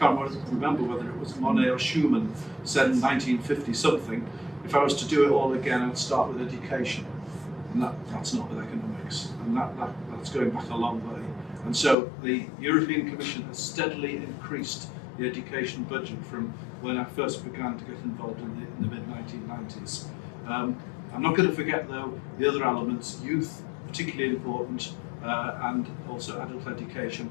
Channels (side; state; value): right; drops out; at 12.0 s